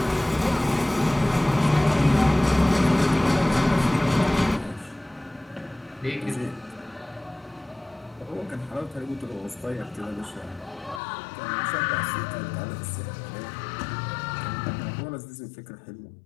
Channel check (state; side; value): drops out; right; at 11.0 s